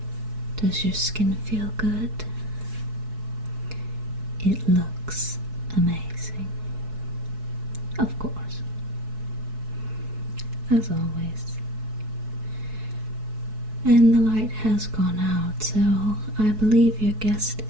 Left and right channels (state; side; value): late; left; 4.6 ms